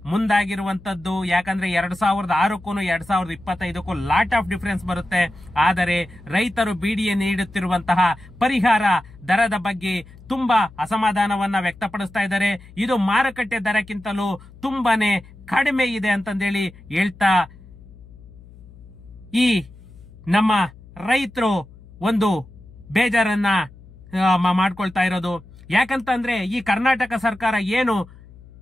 ಮುಂದಾಗಿರುವಂತದ್ದು. ಯಾಕಂದ್ರೆ 2006ಕ್ಕೂ 2025ಕ್ಕೂ ಲಾಟ್ ಆಫ್ ಡಿಫರೆನ್ಸ್ ಬರುತ್ತೆ. ಆದರೆ ರೈತರು ಬಿಡಿಎ ನೀಡುತ್ತಿರುವಂತಹ ಪರಿಹಾರ ದರದ ಬಗ್ಗೆ ತುಂಬಾ ಅಸಮಾಧಾನವನ್ನ ವ್ಯಕ್ತಪಡಿಸ್ತಾ ಇದ್ದಾರೆ. ಇದು ಮಾರುಕಟ್ಟೆ ದರಕ್ಕಿಂತಲೂ ತುಂಬಾನೇ ಕಡಿಮೆ ಇದೆ ಅಂತಂದೇಳಿ ಹೇಳ್ತಾ ಈ ನಮ್ಮ ರೈತರು ಒಂದು ಬೇಜಾರನ್ನ ಮಾಡ್ಕೊಳ್ತಾ ಇರೋದು. ಯಾಕಂತಂದ್ರೆ ಈ ಕರ್ನಾಟಕ ಸರ್ಕಾರ ಏನು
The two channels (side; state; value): left; noise; hum, 21 dB below the sound